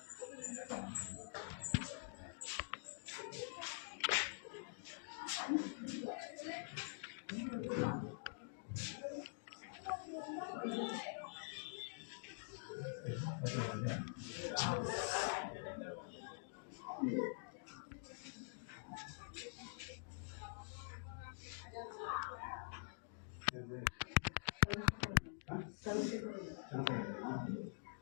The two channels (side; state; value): right; silent; digital silence